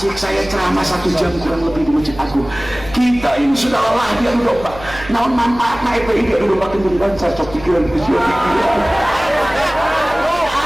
saya ceramah 1 jam kurang lebih di Masjid Agung kita ini sudah lelah diadu domba naon manfaatna FPI diadu domba kenduri bangsa cok pikiran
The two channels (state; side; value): noise; right; hum, 15 dB below the sound